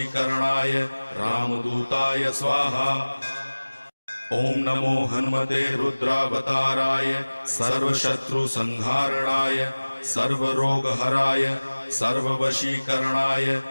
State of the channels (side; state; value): both; inverted; correlation -1.00